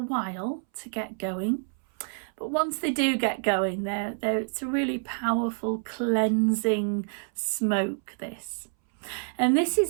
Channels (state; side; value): silent; left; 60 dB below the other